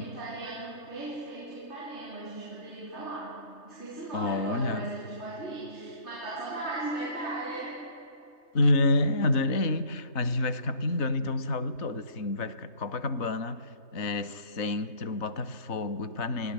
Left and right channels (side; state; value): right; late; 3.3 ms